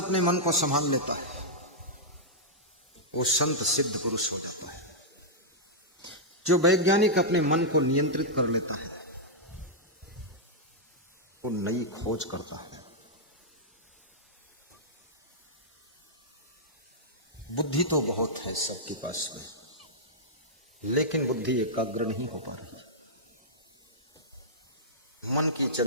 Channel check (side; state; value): both; normal; correlation -0.09